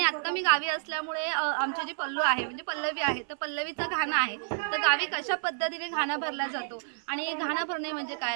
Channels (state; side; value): silent; left; 58 dB below the other